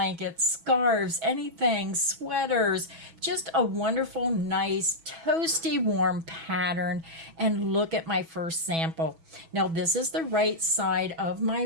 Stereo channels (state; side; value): late; left; 6.1 ms